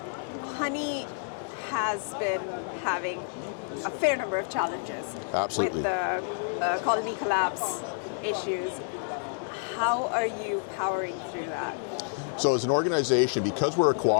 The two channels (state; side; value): silent; right; 56 dB below the other